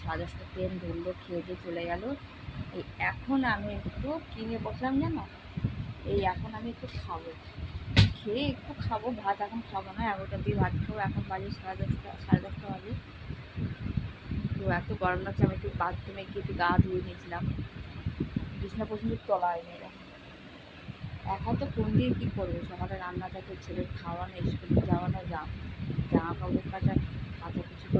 10:30 ট্রেন ধরলো, খেয়ে দিয়ে চলে গেল। এই এখন আমি একটু কিনে বসলাম জানো। এখন আমি একটু খাবো, খেয়ে একটু খাবো। ভাত এখন খাবো না, 11টার দিয়ে ভাত খাবো। এখন বাজে 10:30 বাজে। তো এত গরম লাগছে, আমি একটু বাথরুমে গিয়ে একটু গা ধুয়ে নিয়েছিলাম। বিছনা পর্যন্ত তোলা হয়নি এরকম। একা তো কোন দিয়ে কী করবো, সকালে রান্না থাকে, ছেলের খাওয়ানো, স্কুলে যাওয়ানো, জামা কাপড় কাচাকুচি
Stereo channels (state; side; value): identical; both; correlation 1.00